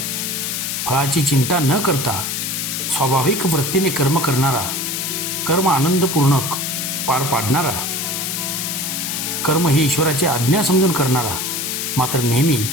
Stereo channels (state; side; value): noise; left; hiss, 2 dB below the sound